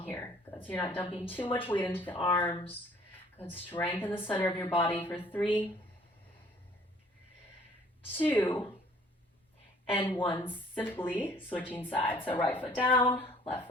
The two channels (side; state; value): both; normal; correlation 0.57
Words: here. Good, so you're not dumping too much weight into the arms. Good, strengthen the center of your body for 3, 2, and 1, simply switching sides. So right foot down, left